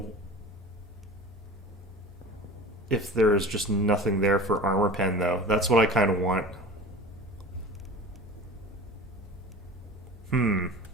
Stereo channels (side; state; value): both; normal; correlation 0.37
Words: if there's just nothing there for armor pen, though. That's what I kind of want.